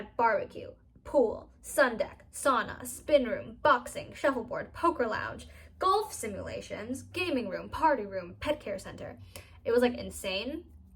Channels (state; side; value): identical; both; correlation 1.00